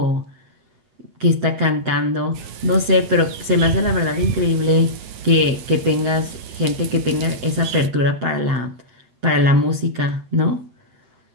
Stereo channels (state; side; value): late; left; 7.6 ms